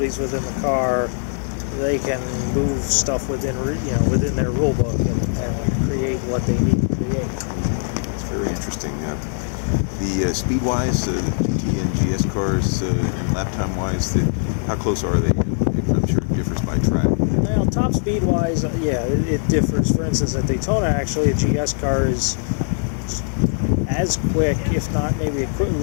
within the car. They can move stuff within their rule book and create what they need to create. It's very interesting. The speed-wise, the GT and GS cars, and lap time-wise, how close are they? I'm sure it differs by track. Well, top speed-wise, it differs. For instance, at Daytona, actually, a GS car is as quick, if not maybe a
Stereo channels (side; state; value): right; silent; digital silence